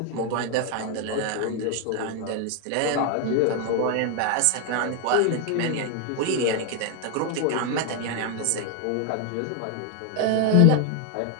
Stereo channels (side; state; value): both; different; correlation 0.01